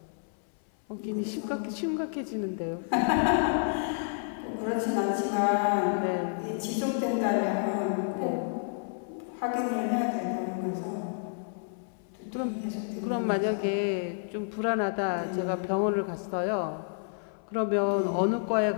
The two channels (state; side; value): silent; right; 58 dB below the other